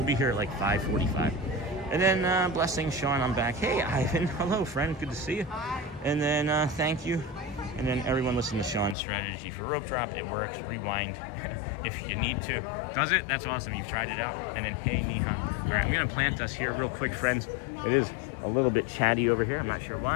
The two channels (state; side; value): drops out; right; at 9.0 s